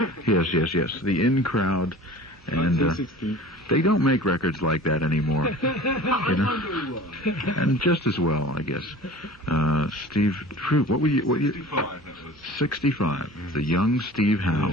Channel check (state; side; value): normal; both; correlation 0.42